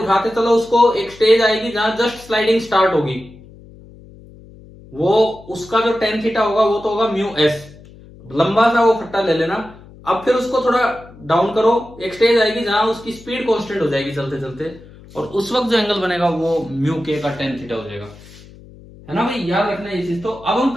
चलो उसको, एक स्टेज आएगी जहां जस्ट स्लाइडिंग स्टार्ट होगी, वो उसका जो टेन थीटा होगा वो तो होगा म्यू एस। लंबा सा वो फट्टा ले लेना। अब फिर उसको थोड़ा डाउन करो, एक स्टेज आएगी जहां उसकी स्पीड कांस्टेंट हो जाएगी चलते चलते, और उस वक्त जो एंगल बनेगा वो म्यू के का टेन थीटा हो जाएगा, है ना भाई? याद रखना ये चीज। तो अब हम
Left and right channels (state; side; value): noise; left; hum, 21 dB below the sound